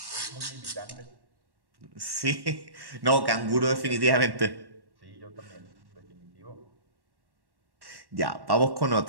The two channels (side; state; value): left; late; 1.1 ms